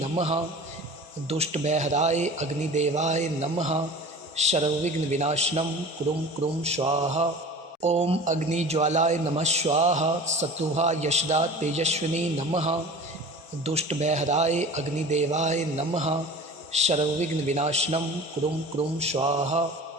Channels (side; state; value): both; normal; correlation 0.39